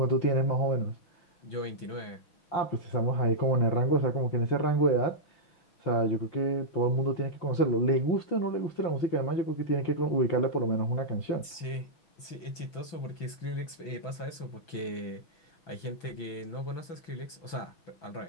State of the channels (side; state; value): right; late; 6.0 ms